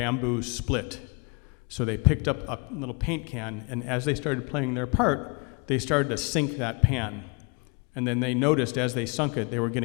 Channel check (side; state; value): right; quieter; 32.7 dB